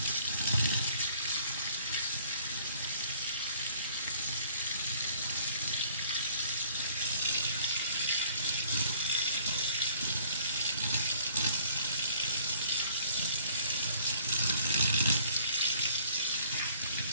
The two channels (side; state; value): both; inverted; correlation -0.57